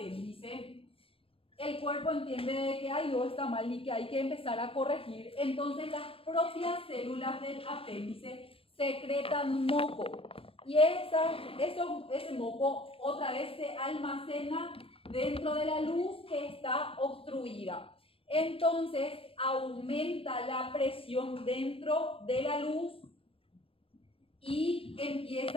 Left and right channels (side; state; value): right; late; 0.27 ms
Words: el cuerpo entiende que algo está mal y que hay que empezar a corregir. Entonces, las propias células del apéndice secretan moco. Y ese moco otra vez se almacena dentro de la luz que está obstruida. Entonces aumenta la presión dentro de la luz y